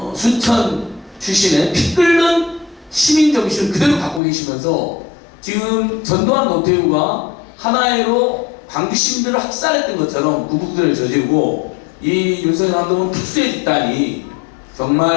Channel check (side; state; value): right; drops out; at 4.2 s